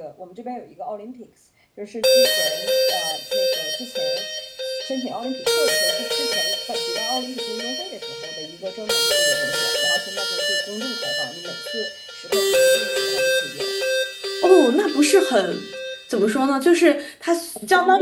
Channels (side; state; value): both; identical; correlation 1.00